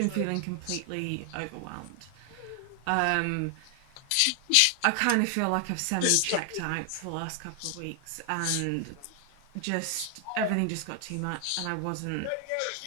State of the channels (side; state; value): both; different; correlation 0.00